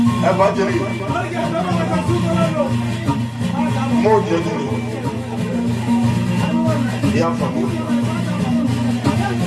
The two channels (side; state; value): both; identical; correlation 1.00